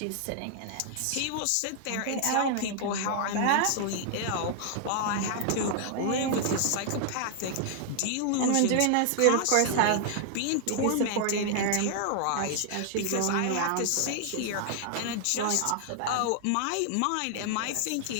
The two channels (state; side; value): different; both; correlation 0.00